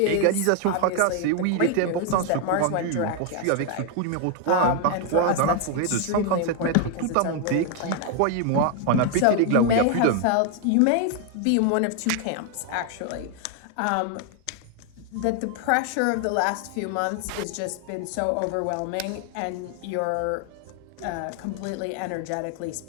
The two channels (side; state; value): both; different; correlation 0.00